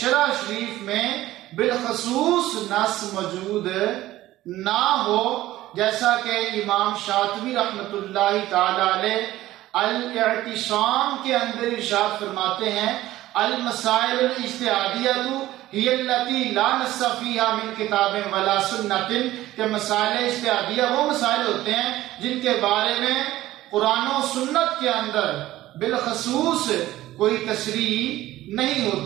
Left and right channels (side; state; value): left; quieter; 15.5 dB